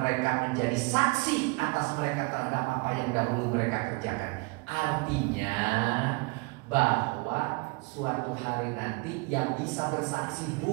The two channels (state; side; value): quieter; left; 28.9 dB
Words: menjadi saksi atas mereka terhadap apa yang dahulu mereka kerjakan. Artinya bahwa suatu hari nanti yang bisa bersaksi